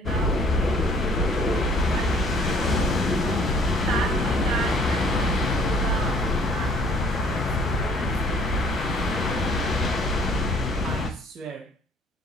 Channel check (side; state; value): both; normal; correlation 0.58